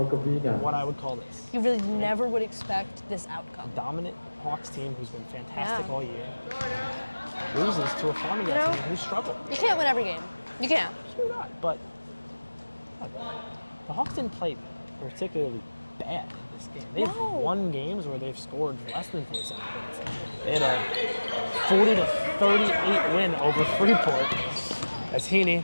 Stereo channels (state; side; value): inverted; both; correlation -1.00